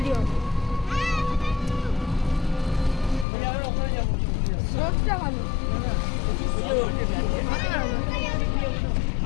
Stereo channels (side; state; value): right; drops out; at 3.2 s